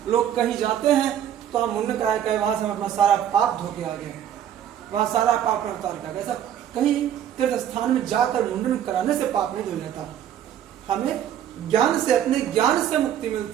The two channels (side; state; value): left; quieter; 10.2 dB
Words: लोग कहीं जाते हैं तो हम मुंडन करा के वहां से हम अपना सारा पाप धो के आ गए, वहां सारा पाप उतार के आ गए। ऐसा कहीं तीर्थ स्थान में जाकर मुंडन कराने से पाप नहीं धो जाता। हमें ज्ञान से, अपने ज्ञान से मुक्ति